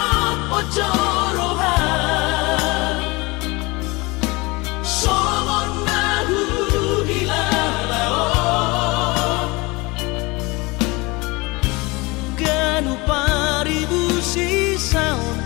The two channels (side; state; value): right; quieter; 24.3 dB